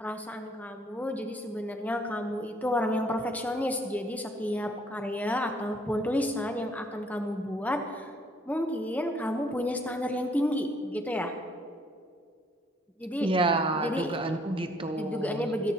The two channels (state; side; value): normal; both; correlation 0.64